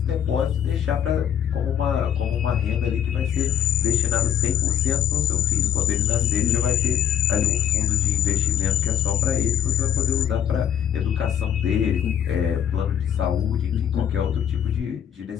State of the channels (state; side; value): quieter; right; 9.0 dB